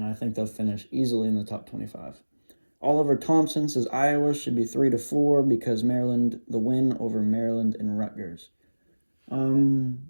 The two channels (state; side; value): inverted; both; correlation -1.00